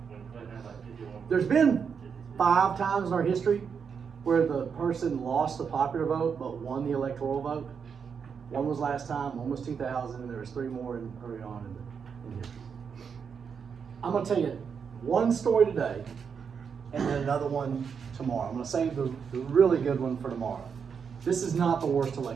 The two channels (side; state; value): left; quieter; 6.5 dB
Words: Clinton had like 51. There's been 5 times in our history where the person lost the popular vote but won the electoral vote. One was last time, one was 2000, and there was 3 more early on in history. I'm going to tell you one story today, and then another one tomorrow. I'm going to save the really good one for tomorrow. This is not the worst